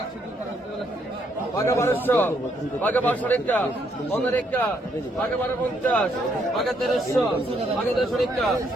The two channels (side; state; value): both; normal; correlation 0.73